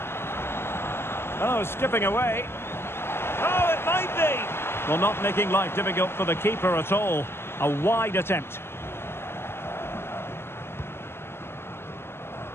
Oh, skipping away. Oh, it might be. Well, not making life difficult for the keeper at all. A wide attempt.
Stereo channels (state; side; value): late; right; 0.12 ms